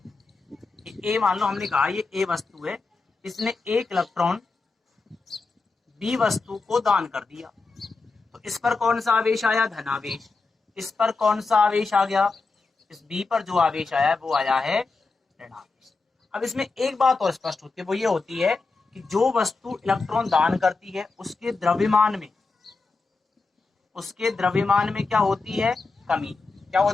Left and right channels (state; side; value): quieter; right; 4.0 dB